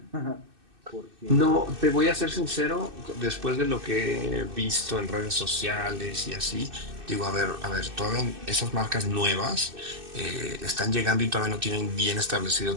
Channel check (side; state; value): left; late; 2.6 ms